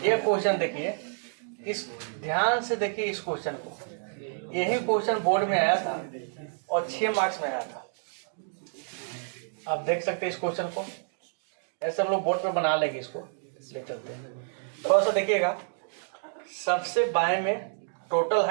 ये क्वेश्चन देखिए, इस ध्यान से देखिए इस क्वेश्चन को। यही क्वेश्चन बोर्ड में आया था और 6 मार्क्स में आया था। आप देख सकते हैं इस क्वेश्चन को। ऐसे हम लोग बोर्ड पे बना लेंगे, इसको ले चलते हैं। थोड़ा सा देखिएगा, सबसे बाएं में टोटल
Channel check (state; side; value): silent; left; digital silence